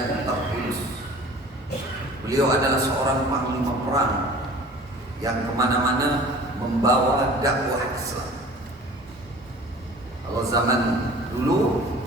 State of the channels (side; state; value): both; normal; correlation 0.45